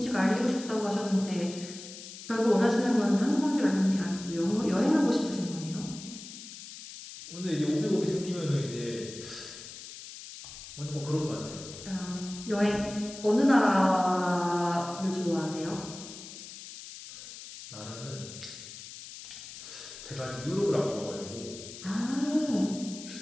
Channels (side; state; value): left; noise; hiss, 13 dB below the sound